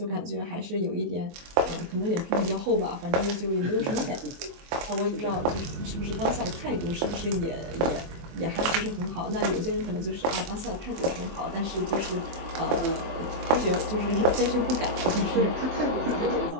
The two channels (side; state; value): left; late; 24 ms